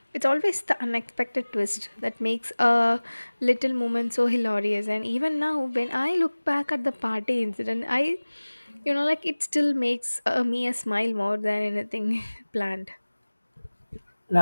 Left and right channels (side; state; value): both; inverted; correlation -1.00